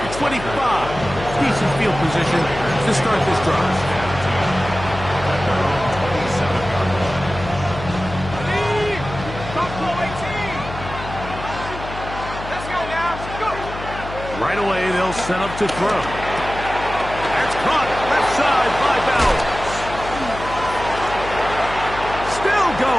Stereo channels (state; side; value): noise; left; hum, 11 dB below the sound